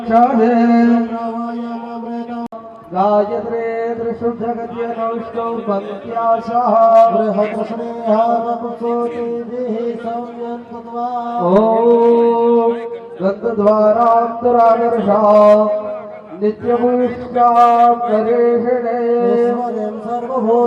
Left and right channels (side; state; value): both; identical; correlation 1.00